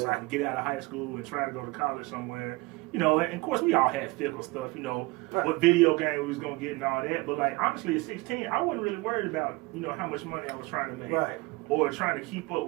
I can get out of high school and try to go to college somewhere. You know, and of course we all had fickle stuff, you know, what video game we was going to get and all that. But, like, honestly, at 16, I wasn't really worried about, you know, how much money I was trying to make. Right. Or trying to keep up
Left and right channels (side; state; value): left; quieter; 23.5 dB